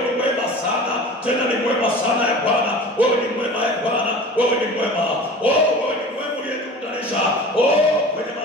ni mwema sana. Tena ni mwema sana Bwana. Wewe ni mwema Bwana. Wewe ni mwema. Oh, wewe ni mwema uliyekutanisha. Oh, kwenye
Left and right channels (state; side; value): normal; both; correlation 0.38